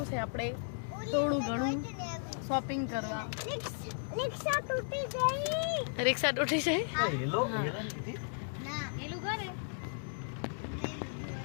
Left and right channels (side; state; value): right; silent; digital silence